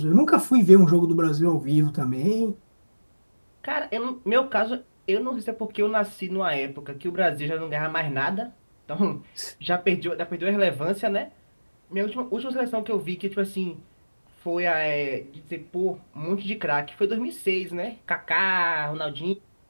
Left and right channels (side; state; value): both; inverted; correlation -1.00